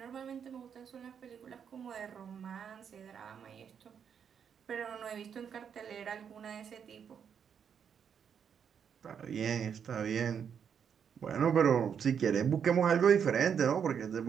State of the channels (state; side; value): quieter; left; 7.6 dB